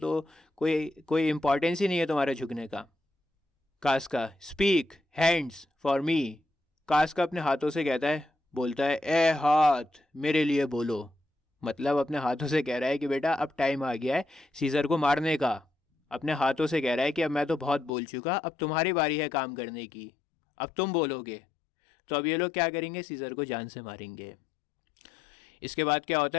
कोई कोई इम्पोर्टेंस ही नहीं है तुम्हारे झुकने का। कास्का, स्पीक हैंड्स फॉर मी। कास्का अपने हाथों से कहता है, बोलता है, ए हाथ मेरे लिए बोलो। मतलब अपने हाथों से कह रहा है कि बेटा अब टाइम आ गया है सीजर को मारने का। अपने हाथों से कह रहा है कि अब मैं तो बहुत बोल चुका, अब तुम्हारी बारी है काम करने की, अब तुम बोलोगे। तो अब ये लोग क्या करेंगे? सीजर को जान से मारेंगे। इसके बाद क्या होता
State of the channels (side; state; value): right; drops out; at 17.9 s